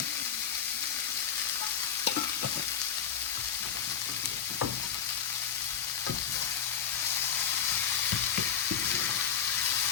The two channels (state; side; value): quieter; right; 8.1 dB